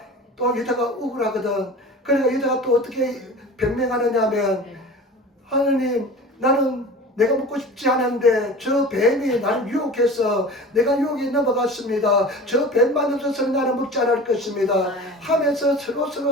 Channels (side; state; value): both; normal; correlation 0.37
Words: 또 여자가 억울하거든. 그러니까 여자가 또 어떻게 변명하느냐 하면, 하느님, 나는 내가 먹고 싶지 않은데 저 뱀이 나를 유혹해서 내가 유혹에 넘어갔습니다. 저 뱀만 없어서는 나는 먹지 않을 것입니다 하면서